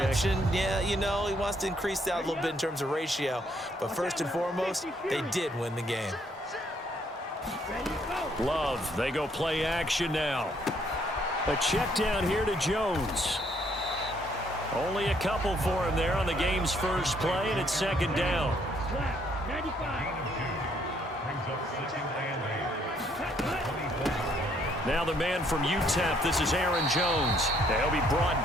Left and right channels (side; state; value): both; normal; correlation 0.68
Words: Yeah, you know, he wants to increase that a little bit in terms of ratio. But first and foremost, they did win the game. Love, they go play action now. A check down here to Jones. Only a couple for him there on the game's first play, and it's second down. Now the man from UTEP, this is Aaron Jones. He'll be brought